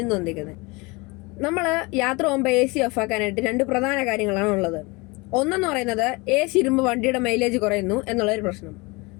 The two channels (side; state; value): right; quieter; 26.1 dB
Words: ഇന്ന് വന്നിരിക്കുന്നത്. നമ്മൾ യാത്ര പോകുമ്പോൾ AC ഓഫ് ആക്കാനായിട്ട് രണ്ട് പ്രധാന കാര്യങ്ങളാണ് ഉള്ളത്. ഒന്നെന്ന് പറയുന്നത് AC ഇടുമ്പോൾ വണ്ടിയുടെ മൈലേജ് കുറയുന്നു എന്നുള്ളൊരു പ്രശ്നം.